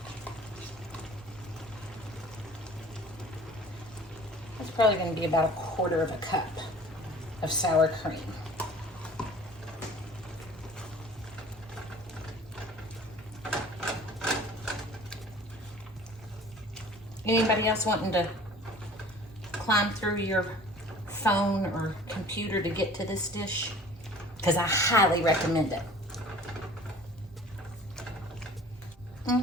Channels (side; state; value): both; normal; correlation 0.47